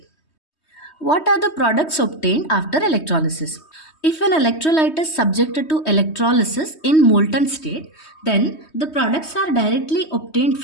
What are the products obtained after electrolysis? If an electrolyte is subjected to electrolysis in molten state, then the products are directly obtained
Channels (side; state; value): right; late; 3.2 ms